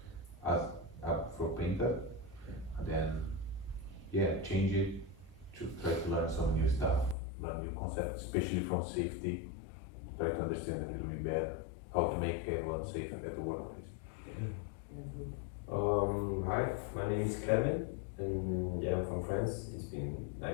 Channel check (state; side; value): drops out; right; at 7.2 s